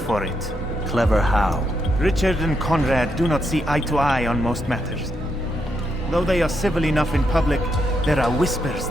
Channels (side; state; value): both; normal; correlation 0.80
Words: it. Clever how? Richard and Conrad do not see eye to eye on most matters. Though they are civil enough in public, there are whispers